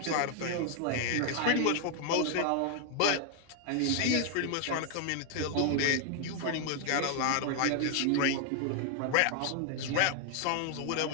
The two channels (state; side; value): different; both; correlation 0.00